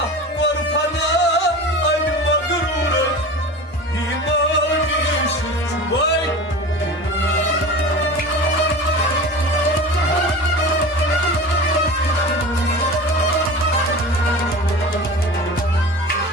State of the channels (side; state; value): both; normal; correlation 0.34